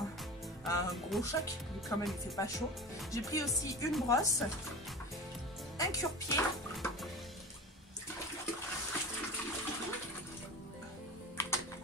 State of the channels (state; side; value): normal; both; correlation 0.33